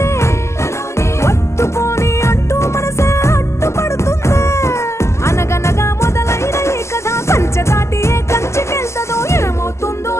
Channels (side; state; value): right; late; 0.13 ms